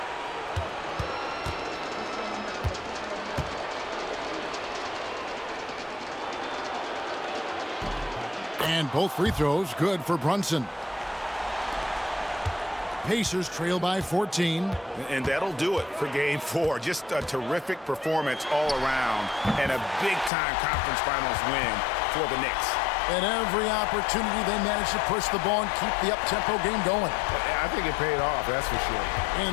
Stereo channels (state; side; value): drops out; right; at 20.3 s